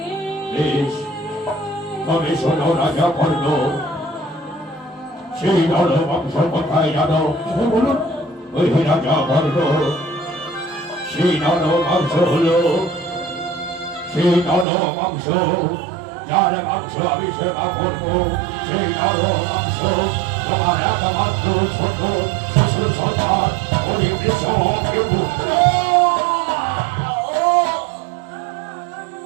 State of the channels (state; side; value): drops out; left; at 14.7 s